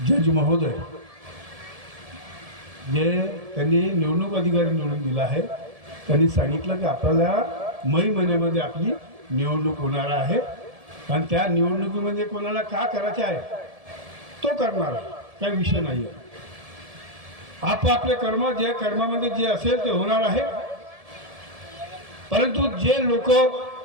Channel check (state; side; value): late; left; 1.7 ms